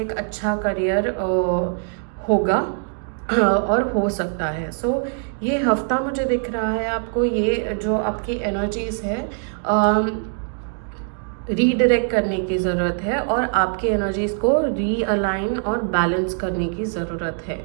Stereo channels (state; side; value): silent; left; 61 dB below the other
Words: एक अच्छा करियर होगा और हो सकता है। सो ये हफ्ता मुझे दिख रहा है आपको, ये जो आपकी एनर्जीज है रीडायरेक्ट करने की ज़रूरत है और आपकी एनर्जीज़ को रीअलाइन और बैलेंस करने की ज़रूरत है.